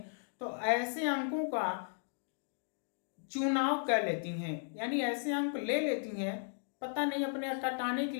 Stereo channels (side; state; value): right; silent; digital silence